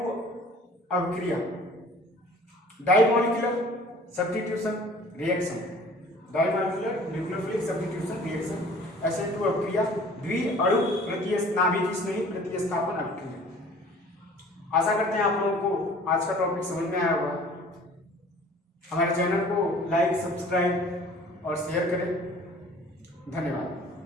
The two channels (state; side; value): normal; both; correlation 0.49